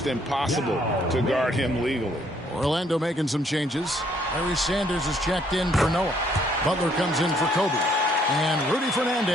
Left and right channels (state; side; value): normal; both; correlation 0.67